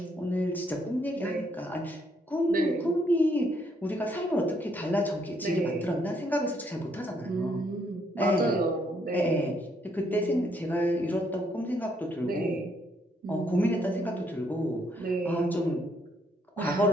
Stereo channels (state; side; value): normal; both; correlation 0.72